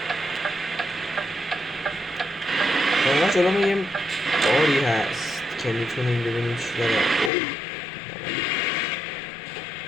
واقعا جلومون یه باری هست که میتونیم ببینیم چی داره.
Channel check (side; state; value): right; drops out; at 7.3 s